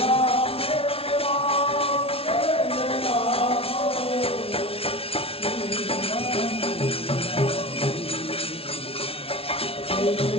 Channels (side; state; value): right; late; 0.27 ms